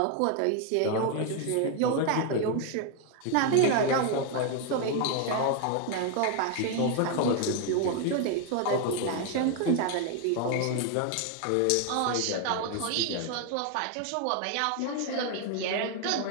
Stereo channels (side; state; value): both; different; correlation 0.01